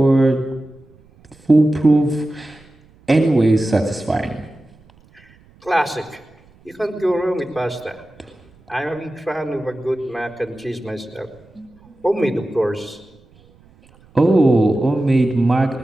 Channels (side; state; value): right; noise; rumble, 29 dB below the sound